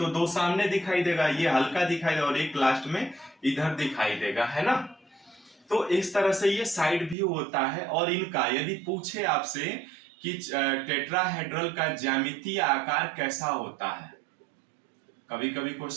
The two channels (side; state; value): left; drops out; at 7.2 s